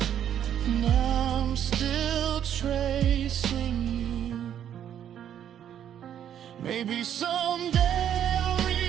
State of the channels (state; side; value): quieter; left; 9.9 dB